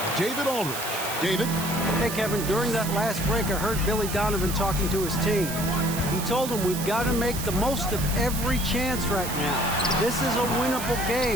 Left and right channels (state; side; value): noise; right; hiss, 7 dB below the sound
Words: David Aldridge. David? Hey, Kevin, during that last break, I heard Billy Donovan talking to his team. He told them we've got to make the most of every chance right now. This is a winnable